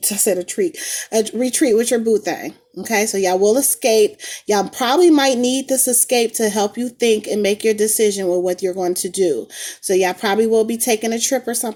I said a retreat with your boo thing. Okay, so y'all will escape. Y'all probably might need this escape to help you think and make your decision with what you're going to do. So y'all probably will be taking a trip or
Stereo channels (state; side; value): identical; both; correlation 1.00